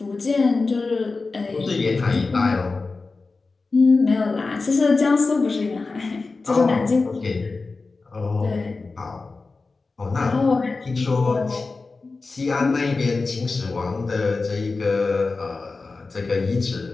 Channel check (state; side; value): quieter; right; 3.9 dB